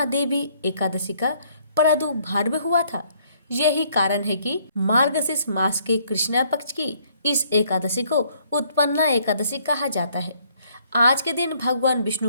एकादशी का प्रादुर्भाव हुआ था। यही कारण है कि मार्गशीर्ष मास के कृष्ण पक्ष की इस एकादशी को उत्पन्ना एकादशी कहा जाता है। आज के दिन भगवान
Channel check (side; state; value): both; inverted; correlation -0.65